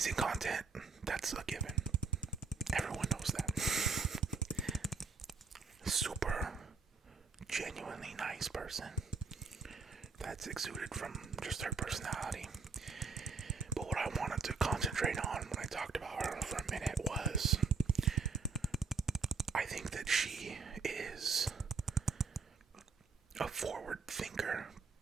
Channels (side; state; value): left; quieter; 4.7 dB